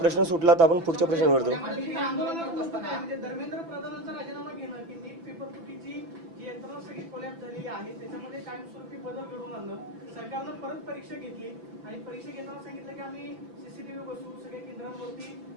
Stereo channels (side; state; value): left; late; 6.0 ms